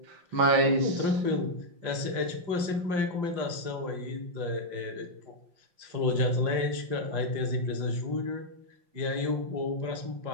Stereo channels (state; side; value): late; left; 5.7 ms